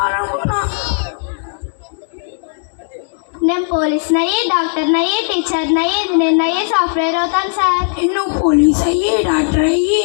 నేను పోలీస్ని అయ్యి, డాక్టర్ని అయ్యి, టీచర్ని అయ్యి, ఇంజనీర్ని అయ్యి, సాఫ్ట్వేర్ అవుతాను సార్. నువ్వు పోలీస్ అయ్యి, డాక్టర్ అయ్యి,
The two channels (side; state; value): right; silent; 69 dB below the other